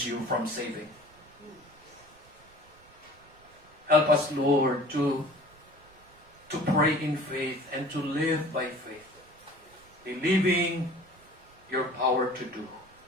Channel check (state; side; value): noise; right; rumble, 27 dB below the sound